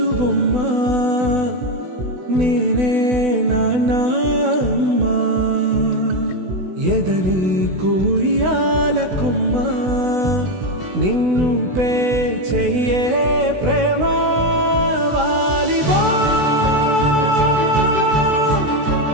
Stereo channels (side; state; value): left; late; 16 ms